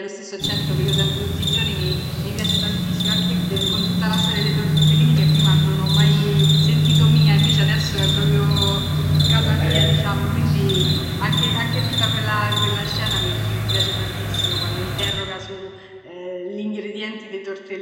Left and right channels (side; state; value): both; identical; correlation 1.00